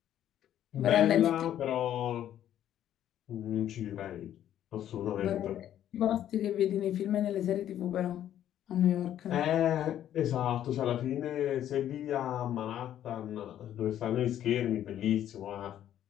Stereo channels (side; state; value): right; quieter; 11.2 dB